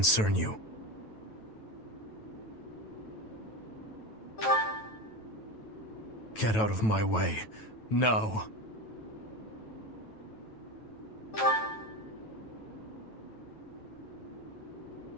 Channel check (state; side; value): late; right; 9.2 ms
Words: you. Get out of my way. No.